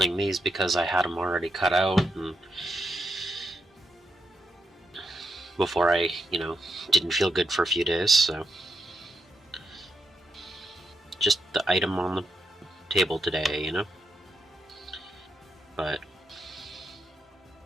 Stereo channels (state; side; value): normal; both; correlation 0.81